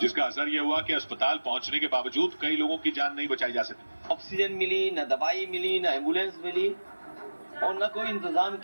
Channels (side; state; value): both; inverted; correlation -1.00